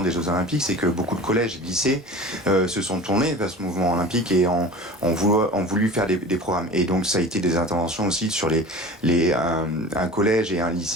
des Jeux Olympiques, c'est que beaucoup de collèges et lycées se sont tournés vers ce mouvement olympique et ont voulu faire des programmes. Et donc ça a été des interventions aussi sur un collège et un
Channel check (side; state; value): both; normal; correlation 0.37